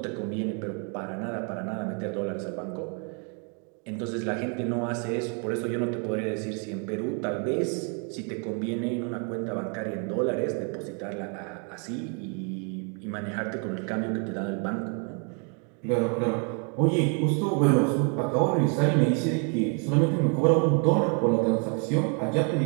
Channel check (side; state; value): left; quieter; 38.5 dB